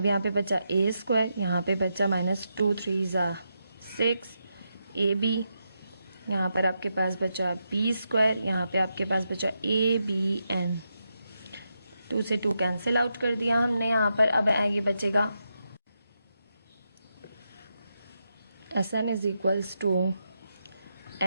यहाँ पे बचा ए स्क्वायर, यहाँ पे बचा माइनस टू थ्री ज़ा सिक्स ए बी, यहाँ पर आपके पास बचा बी स्क्वायर, यहाँ पे आपके पास बचा ए बी एन। टू से टू कैंसिल आउट कर दिया हमने यहाँ पर। अब ये बचेगा S N is equals to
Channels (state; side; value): inverted; both; correlation -0.85